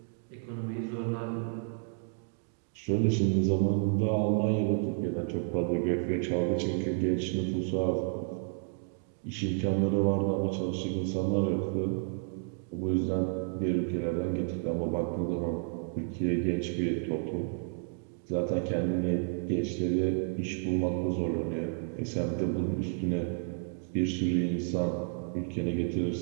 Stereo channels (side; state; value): left; silent; 57 dB below the other